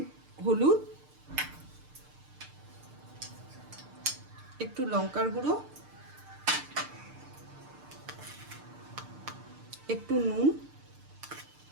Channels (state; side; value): late; left; 6.7 ms